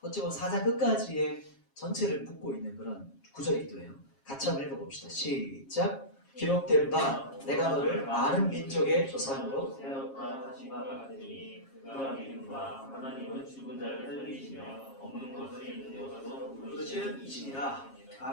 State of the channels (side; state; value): right; late; 7.4 ms